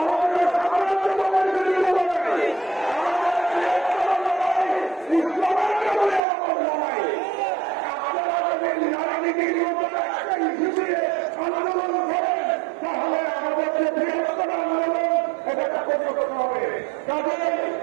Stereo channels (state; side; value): drops out; left; at 6.2 s